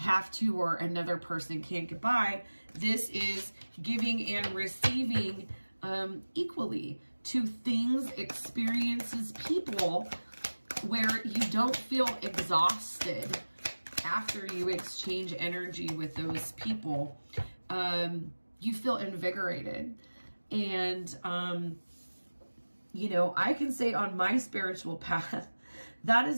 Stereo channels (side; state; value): both; inverted; correlation -1.00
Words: to or another person can't get by. This is giving and receiving equally to things, experiences, people, where you don't feel exhausted after you exchange energy with those people. You feel invigorated. And, you know, I can say on my spiritual path, that